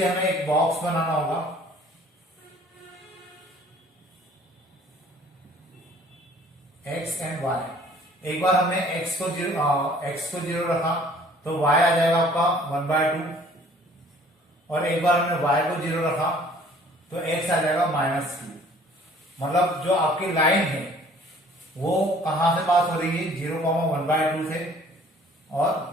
हमें एक बॉक्स बनाना होगा। x एंड y, एक बार हमने x को जीरो रखा तो y आ जाएगा आपका 1 बाय 2, और एक बार हमने y को 0 रखा तो x आ जाएगा -2। मतलब जो आपकी लाइन है वो कहां से पास हो रही है, 0, 1 बाय 2 से और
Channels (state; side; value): normal; both; correlation 0.54